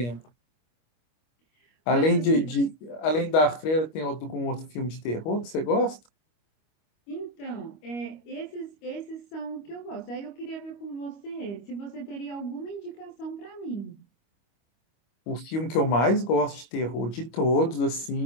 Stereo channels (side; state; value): right; late; 25 ms